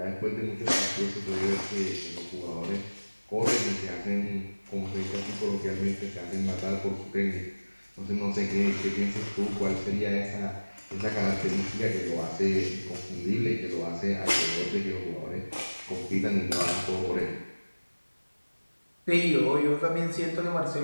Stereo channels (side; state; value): both; inverted; correlation -1.00